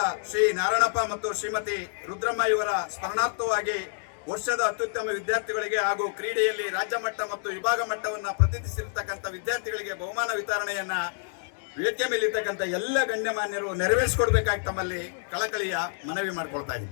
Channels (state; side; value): silent; right; digital silence